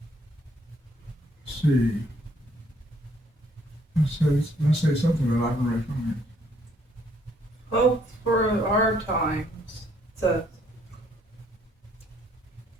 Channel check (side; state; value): both; normal; correlation 0.66